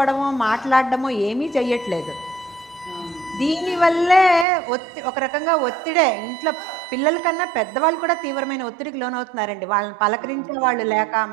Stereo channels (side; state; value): left; drops out; at 4.5 s